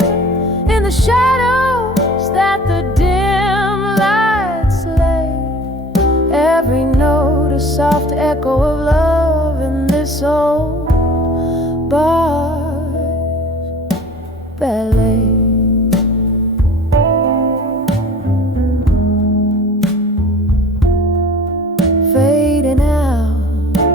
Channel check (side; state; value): both; normal; correlation 0.45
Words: in the shadows that the dim lights lay. Every note a soft echo of love in this old bar's ballet. Fading out,